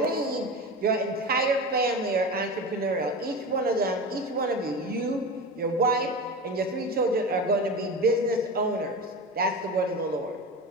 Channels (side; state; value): both; normal; correlation 0.27